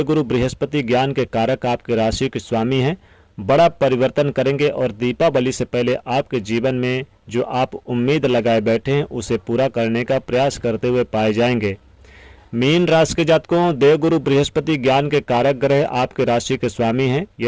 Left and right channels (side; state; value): both; identical; correlation 1.00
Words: बृहस्पति ज्ञान के कारक आपके राशि के स्वामी हैं, बड़ा परिवर्तन करेंगे और दीपावली से पहले आपके जीवन में जो आप उम्मीद लगाए बैठे हैं उसे पूरा करने का प्रयास करते हुए पाए जाएंगे। मीन राशि के जातकों, देवगुरु बृहस्पति ज्ञान के कारक ग्रह आपके राशि के स्वामी हैं।